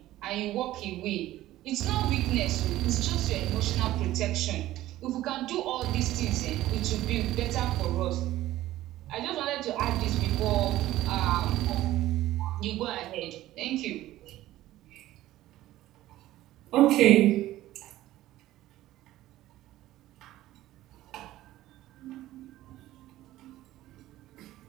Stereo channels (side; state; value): left; quieter; 15.2 dB